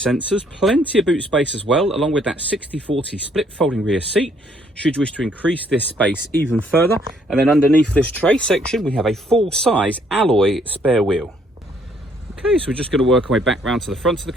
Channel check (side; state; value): both; normal; correlation 0.67